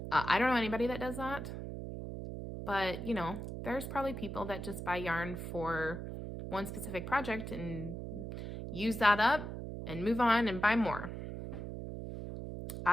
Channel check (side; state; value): right; noise; hum, 7 dB below the sound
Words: I don't know anybody that does that, but you know, there's probably people that just buy yarn for one specific project and use that up and move on and buy more.